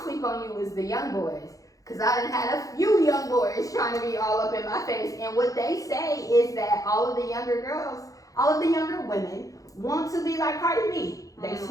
sleep on you is the young boys. Because I done had a few young boys trying to be all up in my face. And what they say is that all of the younger girls, all of the younger women want to be like Cardi B. They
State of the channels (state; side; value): late; right; 0.17 ms